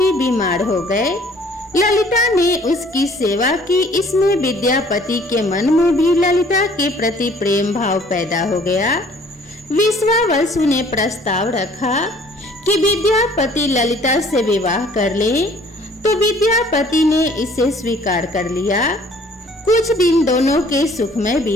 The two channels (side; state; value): both; normal; correlation 0.56